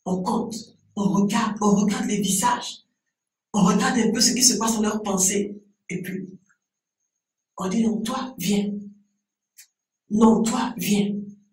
On compte, on regarde les visages, on regarde un peu ce qui se passe dans leurs pensées, et puis on dit non, toi, viens. Non, toi, viens.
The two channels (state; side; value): identical; both; correlation 1.00